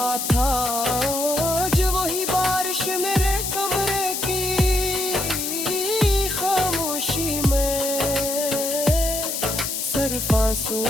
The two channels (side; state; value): left; noise; hiss, 3 dB below the sound